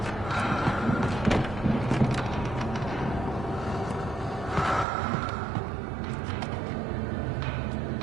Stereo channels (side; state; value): left; drops out; at 4.9 s